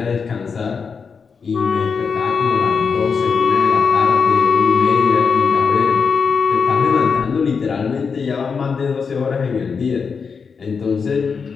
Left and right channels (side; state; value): right; quieter; 5.6 dB